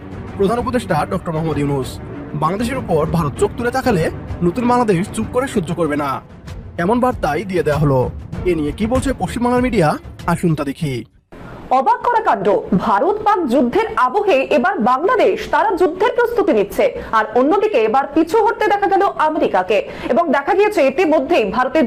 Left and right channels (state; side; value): identical; both; correlation 1.00